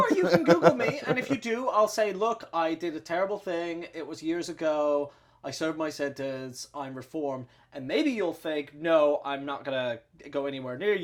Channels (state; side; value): identical; both; correlation 1.00